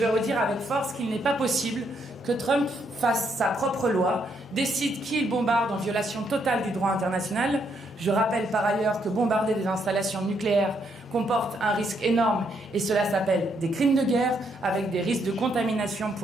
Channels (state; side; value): normal; both; correlation 0.75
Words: redire avec force qu'il n'est pas possible que Trump fasse sa propre loi, décide qui il bombarde en violation totale du droit international. Je rappelle par ailleurs que bombarder des installations nucléaires comporte un risque énorme et cela s'appelle des crimes de guerre avec des risques de contamination